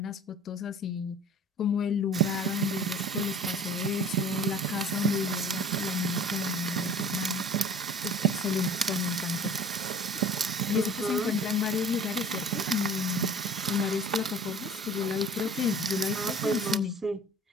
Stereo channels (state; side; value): normal; both; correlation 0.46